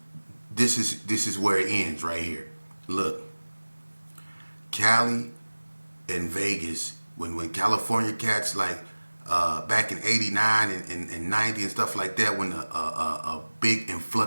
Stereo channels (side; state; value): both; inverted; correlation -1.00